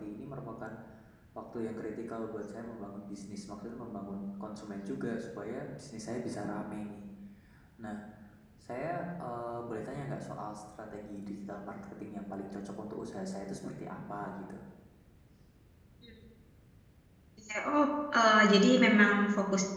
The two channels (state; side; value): identical; both; correlation 1.00